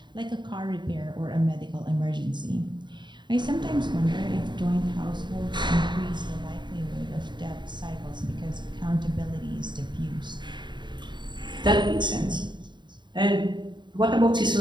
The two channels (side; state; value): left; late; 0.22 ms